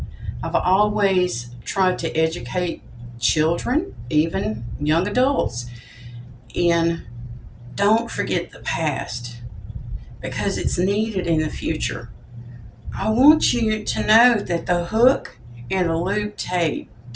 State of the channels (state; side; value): identical; both; correlation 1.00